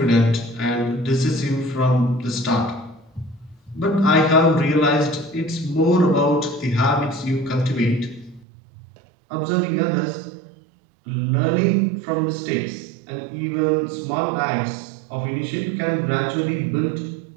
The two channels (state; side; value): drops out; left; at 8.5 s